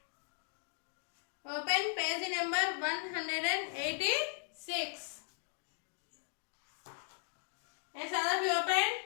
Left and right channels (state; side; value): silent; right; 53 dB below the other